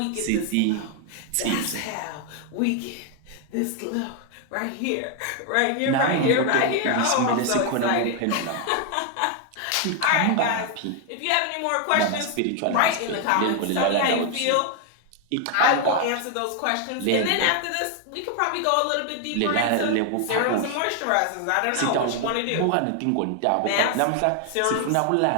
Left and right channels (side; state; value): both; different; correlation 0.01